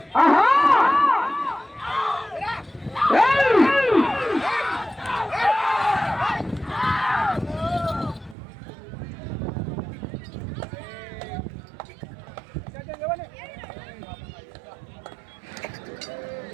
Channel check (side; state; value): left; drops out; at 8.3 s